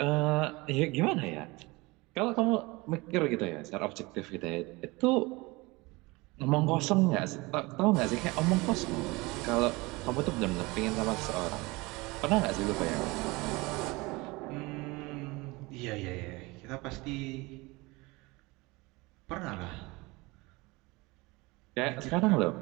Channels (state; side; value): quieter; left; 23.6 dB